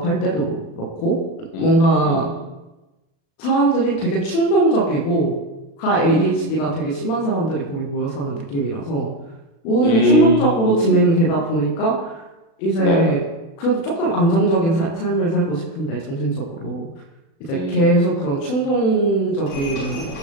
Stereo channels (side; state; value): right; late; 36 ms